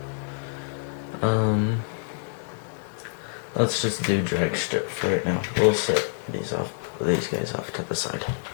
let's just do Drag Strip for right now. We'll set these guys off to the side.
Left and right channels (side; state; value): right; silent; digital silence